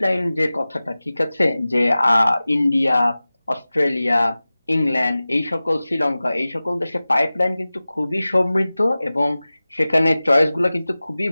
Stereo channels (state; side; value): inverted; both; correlation -0.97